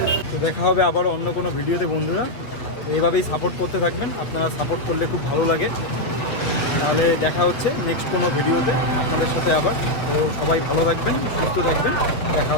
তো দেখা হবে আবার অন্য কোনো ভিডিওতে বন্ধুরা। তো এইভাবেই সাপোর্ট করতে থাকবেন, আপনারা সাপোর্ট করলে খুব ভালো লাগে। তাহলে দেখা হচ্ছে নেক্সট কোনো ভিডিওতে আপনাদের সাথে আবার। তো সবাই ভালো থাকবেন, সুস্থ থাকবেন, দেখা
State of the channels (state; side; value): late; right; 8.5 ms